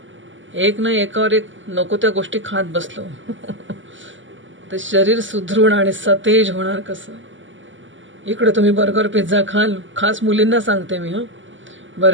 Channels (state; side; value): late; left; 0.55 ms